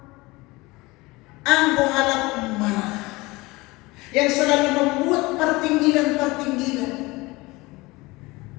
anggo halak marah. Yang selalu membuat pertinggilan-pertinggilan.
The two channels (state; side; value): quieter; right; 22.2 dB